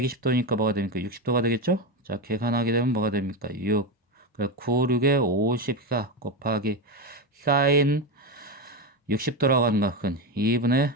뭐가 됩니까? 60도가 되겠죠? 자, 계산하게 되면 뭐가 됩니까? 6. 그래, 9, 6에 54 곱하기 사인 60도라고 하는 값은 2분의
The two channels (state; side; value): normal; both; correlation 0.14